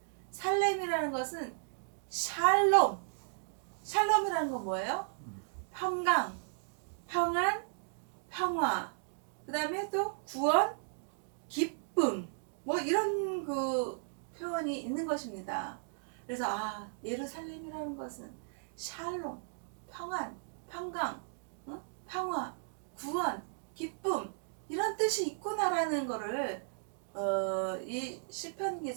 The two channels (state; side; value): silent; left; digital silence